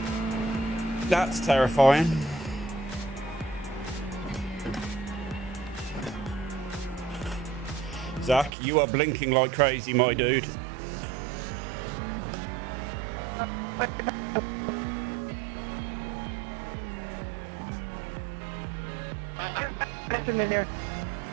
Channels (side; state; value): left; drops out; at 8.5 s